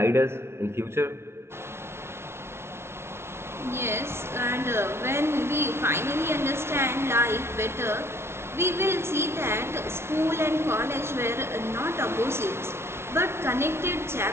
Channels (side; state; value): left; late; 0.12 ms